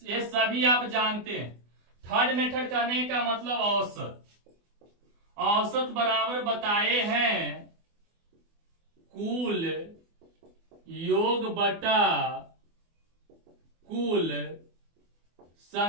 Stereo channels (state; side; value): late; left; 24 ms